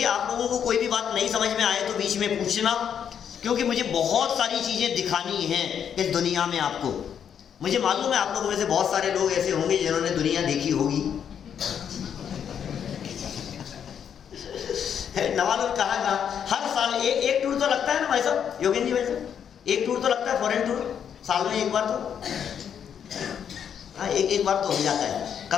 आप लोगों को कोई भी बात नहीं समझ में आए तो बीच में पूछना, क्योंकि मुझे बहुत सारी चीज़ें दिखानी हैं इस दुनिया में आपको। मुझे मालूम है आप लोगों में से बहुत सारे लोग ऐसे होंगे जिन्होंने दुनिया देखी होगी। नवाजुल कहा हर साल एक टूर तो लगता है ना भाई साहब, योगेंद्र जी भाई साहब, एक टूर तो लगता है, फॉरेन टूर साल में एक बार तो, हाँ एक बार तो हो जाता है।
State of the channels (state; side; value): quieter; right; 8.3 dB